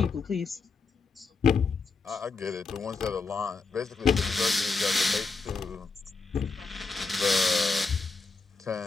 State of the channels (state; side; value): quieter; right; 4.3 dB